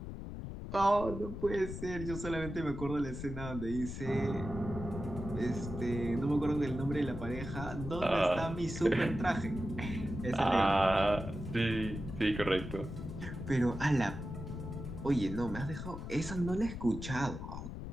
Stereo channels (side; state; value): left; noise; rumble, 8 dB below the sound